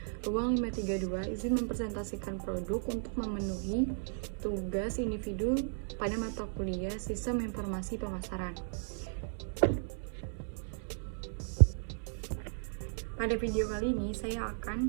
ruang 532, izin mempresentasikan produk untuk memenuhi tugas individu pada mata kuliah Sistem Informasi Pemasaran. Pada video kali ini saya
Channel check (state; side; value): silent; left; 54 dB below the other